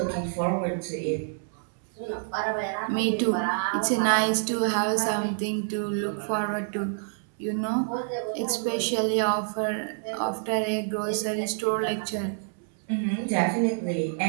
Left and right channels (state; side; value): silent; left; 60 dB below the other